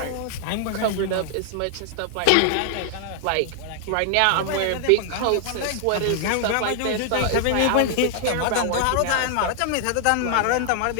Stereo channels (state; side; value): different; both; correlation 0.00